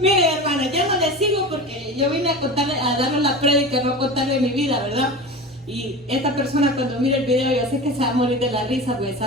hermana, ya no le sigo porque yo vine a darle la prédica, no a contarle mi vida, ¿verdad? Y esta persona cuando mire el video, yo sé que se va a morir de la risa porque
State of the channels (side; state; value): both; normal; correlation 0.30